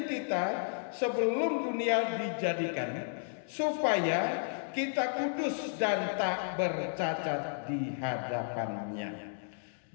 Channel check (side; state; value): right; silent; digital silence